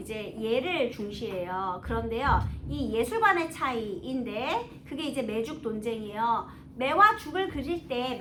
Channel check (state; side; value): identical; both; correlation 1.00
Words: 예를 중시해요. 그런데요, 이 예술관의 차이인데 그게 이제 매죽 논쟁이에요. 매와 죽을 그릴 때